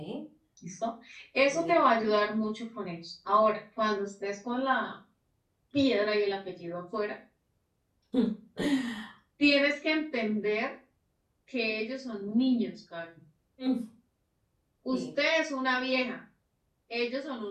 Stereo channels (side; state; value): both; identical; correlation 1.00